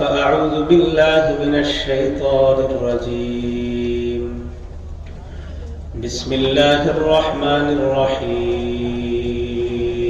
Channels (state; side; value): identical; both; correlation 1.00